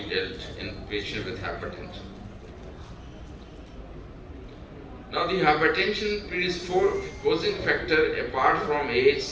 dealt in patients with hypertension. Now, the hypertension predisposing factor apart from age,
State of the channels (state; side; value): identical; both; correlation 1.00